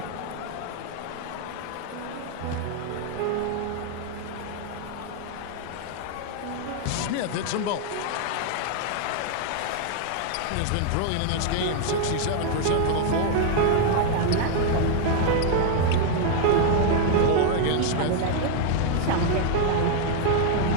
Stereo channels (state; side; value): different; both; correlation 0.00